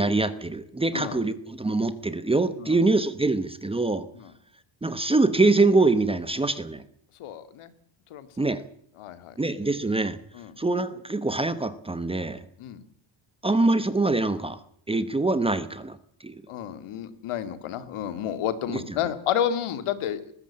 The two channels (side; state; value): both; normal; correlation 0.62